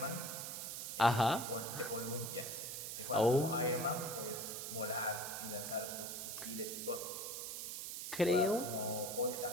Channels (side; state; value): right; noise; hiss, 5 dB below the sound